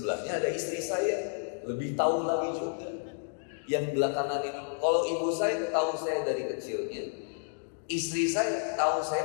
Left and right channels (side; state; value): right; silent; digital silence